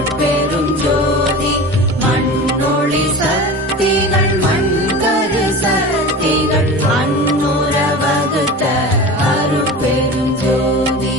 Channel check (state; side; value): normal; both; correlation 0.33